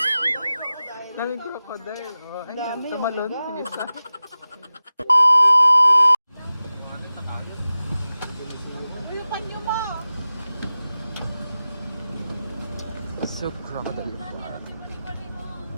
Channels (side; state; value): both; inverted; correlation -0.95